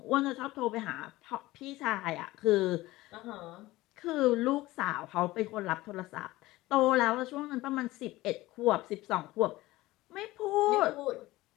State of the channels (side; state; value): right; quieter; 18.3 dB